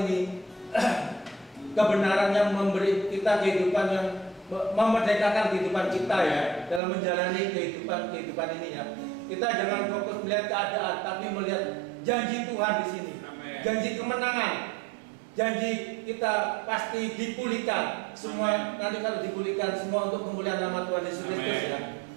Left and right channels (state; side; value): drops out; left; at 6.8 s